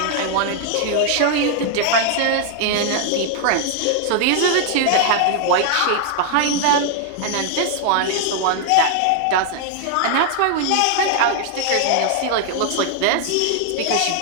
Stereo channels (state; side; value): different; both; correlation 0.00